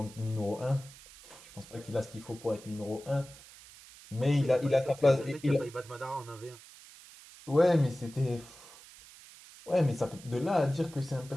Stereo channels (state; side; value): noise; right; hiss, 20 dB below the sound